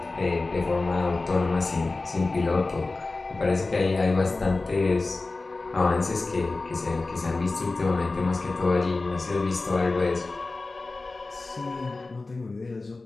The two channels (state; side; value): quieter; right; 3.4 dB